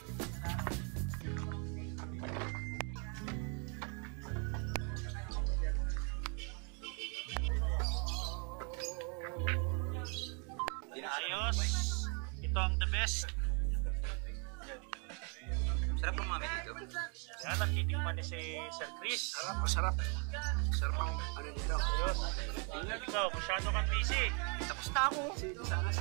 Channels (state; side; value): quieter; left; 36.5 dB